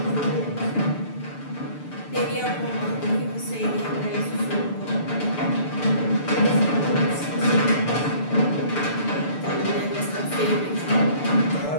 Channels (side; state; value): right; late; 6.8 ms